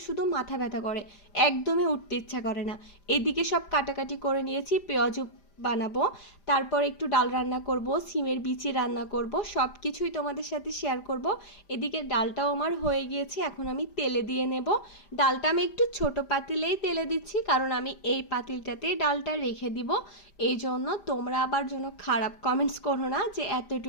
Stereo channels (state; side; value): late; right; 5.0 ms